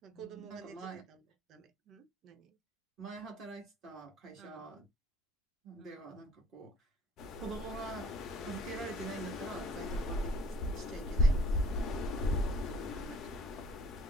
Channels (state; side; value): normal; both; correlation 0.54